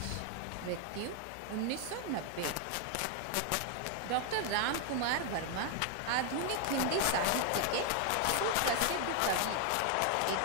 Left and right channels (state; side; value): different; both; correlation 0.00